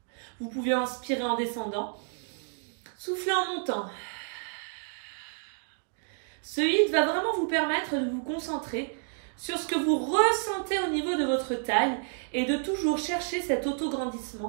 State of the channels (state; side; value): silent; left; 58 dB below the other